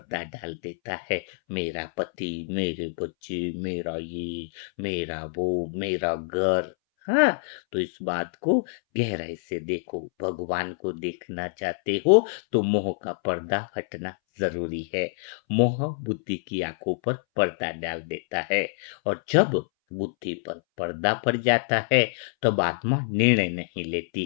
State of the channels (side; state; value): right; silent; 61 dB below the other